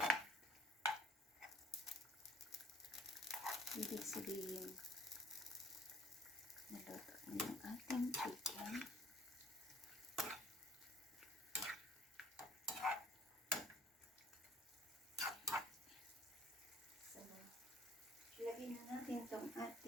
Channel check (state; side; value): normal; both; correlation 0.57